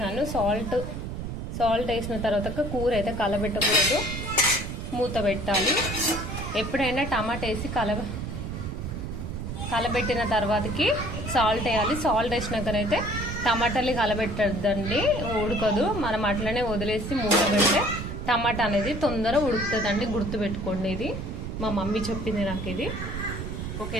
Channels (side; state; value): right; noise; rumble, 5 dB below the sound